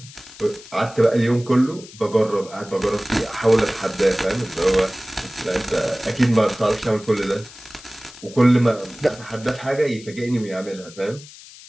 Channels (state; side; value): noise; left; hiss, 19 dB below the sound